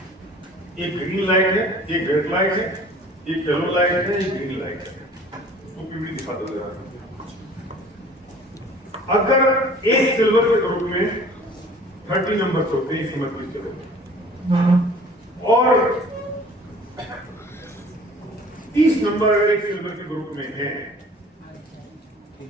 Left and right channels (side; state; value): both; normal; correlation 0.49